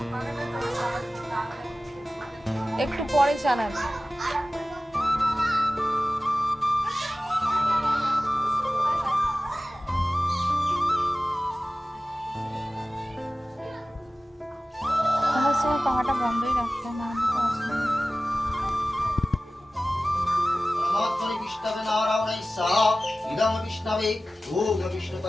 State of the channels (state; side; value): normal; both; correlation 0.96